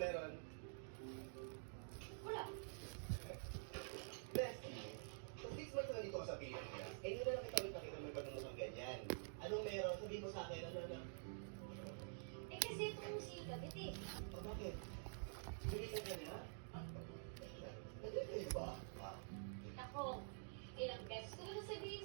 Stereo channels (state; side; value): silent; left; digital silence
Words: Wala. Bestie, so 6 months na dito ka sa Pilipinas, eh yun na lang kita ulit nakita mo yung pagmumukhang ganyan. Anong meron? Sabihin mo sa akin, ano? Eh kasi itong si Kabit eh. O bakit? Bilisan ka niya? Nagkakayo ba? Ako,